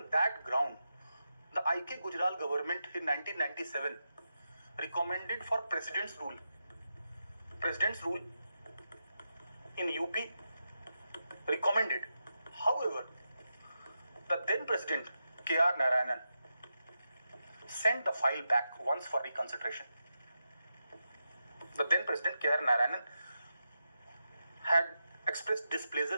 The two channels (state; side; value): inverted; both; correlation -0.88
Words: that ground, the I.K. Gujral government in 1997 recommended for President's rule. President's rule in UP recommended. However, the then President K.R. Narayanan sent the file back once for reconsideration. The then President K.R. Narayanan had expressed